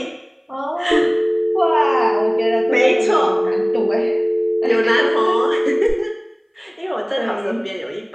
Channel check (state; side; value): identical; both; correlation 1.00